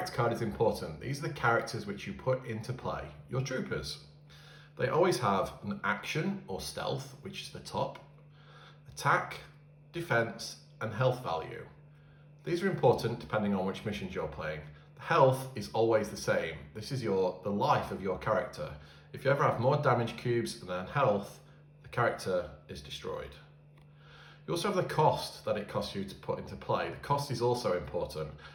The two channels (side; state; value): both; identical; correlation 1.00